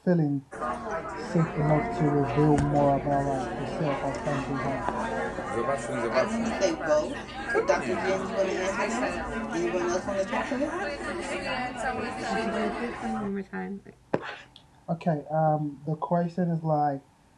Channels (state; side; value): identical; both; correlation 1.00